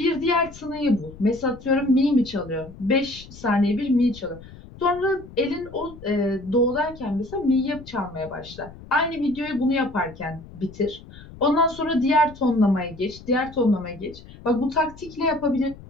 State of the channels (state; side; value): noise; left; rumble, 18 dB below the sound